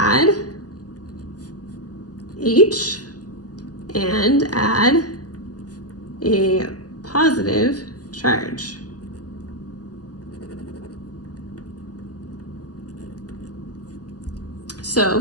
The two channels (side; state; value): right; late; 0.68 ms